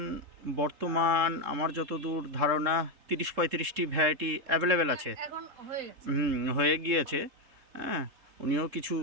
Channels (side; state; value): left; late; 3.7 ms